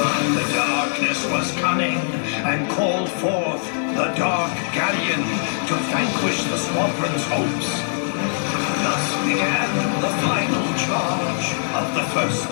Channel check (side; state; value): right; silent; digital silence